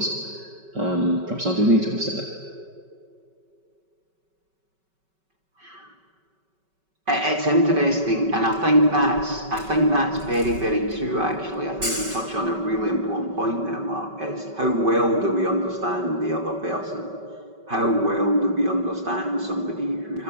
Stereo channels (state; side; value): late; left; 5.3 ms